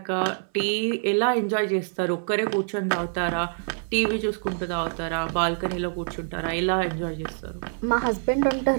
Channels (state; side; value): silent; left; 59 dB below the other